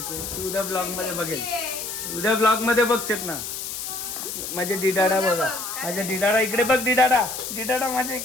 तू उद्या ब्लॉग मध्ये बघेल, उद्या ब्लॉग मध्ये बघचेत ना. माझे डिडाडा बघा, माझ्या डिडाडा इकडे बघ. डिडाडा माझ्या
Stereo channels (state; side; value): noise; left; hiss, 6 dB below the sound